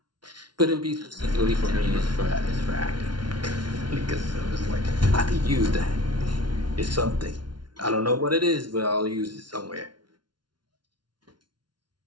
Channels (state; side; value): late; left; 0.71 ms